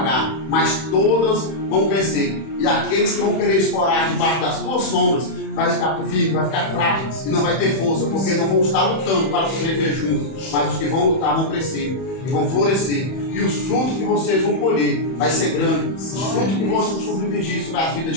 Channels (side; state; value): right; late; 31 ms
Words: mas todas vão crescer. E aqueles que vão querer explorar debaixo das tuas sombras vai ficar firme, vai ficar fraco e não vai ter força, porque não vão estar lutando para sobreviver juntos. Mas os que vão lutar vão crescer e vão florescer. E os frutos que vocês vão colher vai ser grande. Os frutos que vão submergir sobre a vida